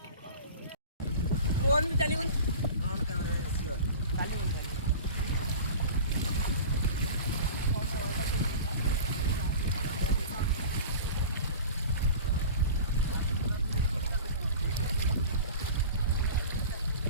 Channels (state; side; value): inverted; both; correlation -0.37